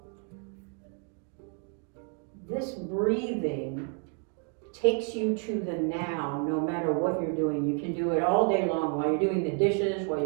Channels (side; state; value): left; quieter; 39.8 dB